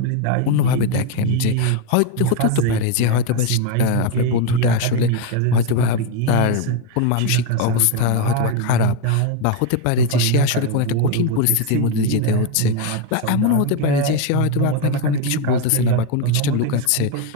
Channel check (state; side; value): different; both; correlation 0.02